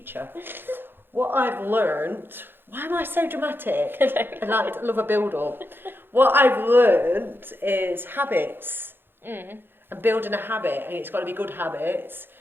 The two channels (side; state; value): left; late; 0.10 ms